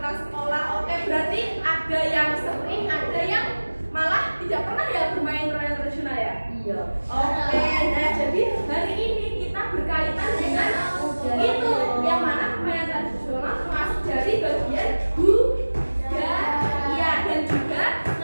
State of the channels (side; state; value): both; inverted; correlation -1.00